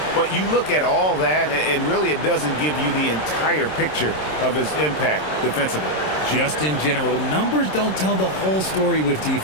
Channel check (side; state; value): right; late; 26 ms